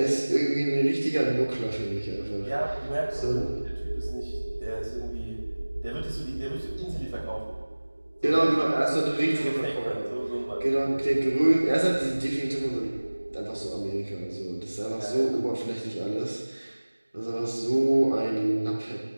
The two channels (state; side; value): inverted; both; correlation -1.00